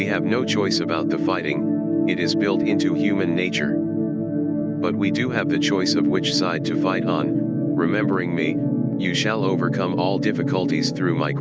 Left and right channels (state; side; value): identical; both; correlation 1.00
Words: have no choice about the fighting, it is built into human nature. But we do have the choice of which side to fight on, remembering me, you shall overcome all difficulties through my